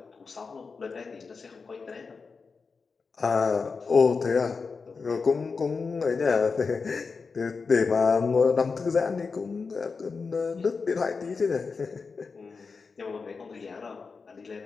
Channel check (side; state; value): right; quieter; 4.8 dB